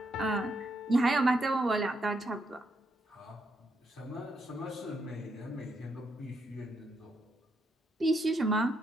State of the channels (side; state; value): both; normal; correlation 0.78